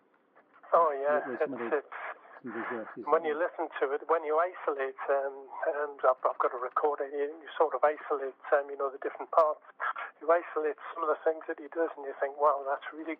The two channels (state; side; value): identical; both; correlation 1.00